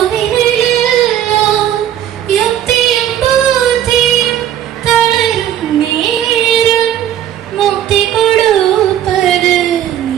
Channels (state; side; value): quieter; left; 10.9 dB